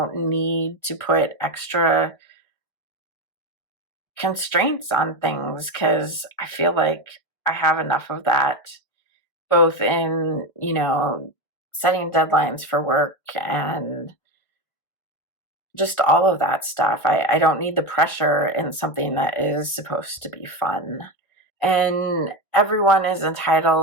need to put extra constraints on things because I feel like I have enough of that, both in, setting deadlines for work and just all of that stuff. I don't need the pressure in something that is supposed to be fun. And everyone is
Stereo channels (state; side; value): late; right; 1.8 ms